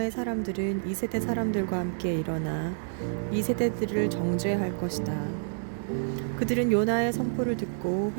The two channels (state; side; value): silent; left; 59 dB below the other